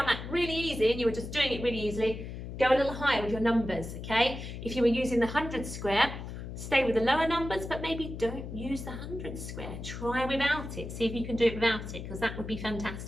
that really easy and you were just doing it really easily, go a little higher with your numbers, okay? If you were using the 100 square, stay with the lower numbers, but maybe don't use the 100 square. Try without it. See if you can do it without it, because that would be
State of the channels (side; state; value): left; noise; hum, 8 dB below the sound